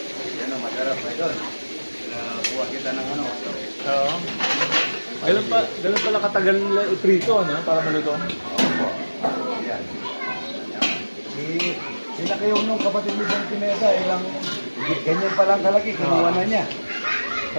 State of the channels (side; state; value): both; inverted; correlation -1.00